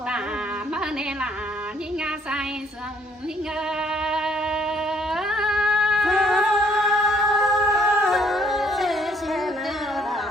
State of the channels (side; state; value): both; normal; correlation 0.64